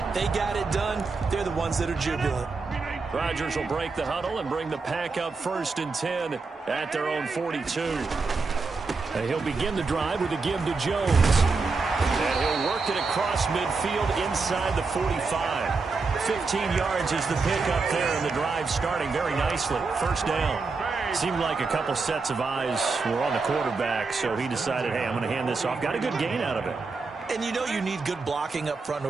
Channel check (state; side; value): quieter; left; 4.3 dB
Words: They got it done. They're the ones that are jubilant. Rodgers will break the huddle and bring the pack up first and 10 at their own 42. And he'll begin the drive with a give to Jones. And he'll work it across midfield inside the 45. 15 yards is the pickup there, and the drive starting very nicely. First down. Seemed like a couple sets of eyes were on the quarterback, so he decided, hey, I'm going to hand this off. Got a good gain out of it. And you know you need good blocking up front in